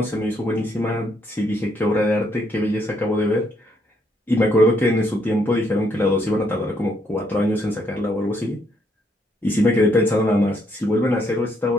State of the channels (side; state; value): both; normal; correlation 0.73